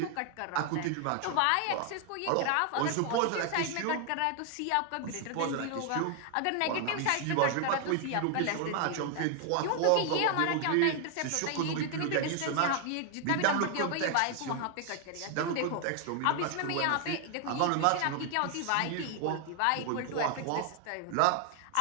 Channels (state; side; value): different; both; correlation 0.00